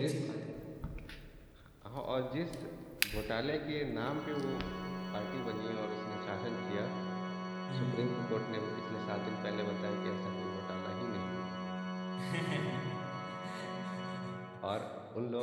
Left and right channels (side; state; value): both; identical; correlation 1.00